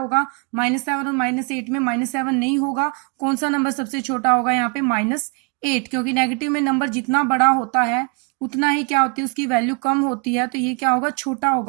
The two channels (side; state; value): left; quieter; 34.4 dB